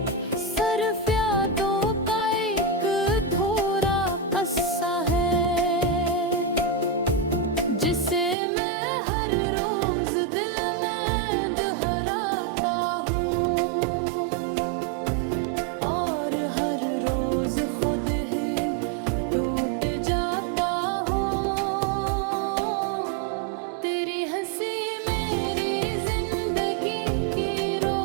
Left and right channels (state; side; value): drops out; left; at 8.3 s